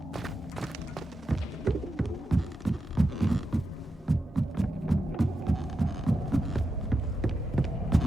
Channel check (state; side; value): normal; both; correlation 0.88